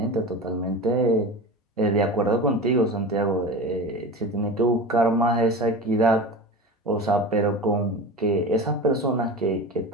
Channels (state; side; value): normal; both; correlation 0.30